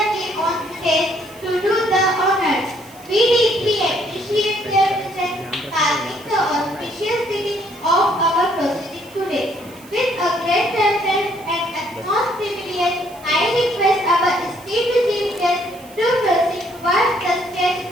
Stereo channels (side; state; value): right; noise; hiss, 23 dB below the sound